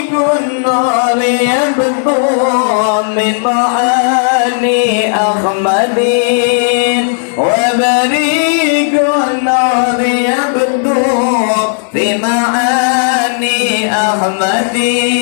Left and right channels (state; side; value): silent; right; digital silence